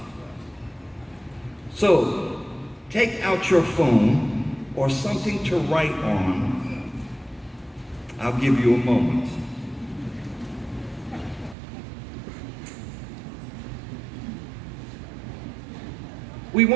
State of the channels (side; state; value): left; drops out; at 11.6 s